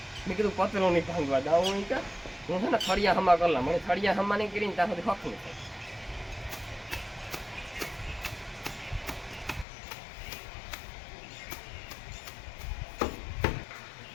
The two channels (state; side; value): drops out; right; at 9.7 s